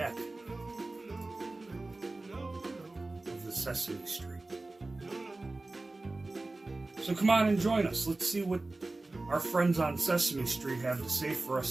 of the Sesame Street. So come on and join us. Let's see what our friends on Sesame Street have to say for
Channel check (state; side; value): quieter; left; 3.1 dB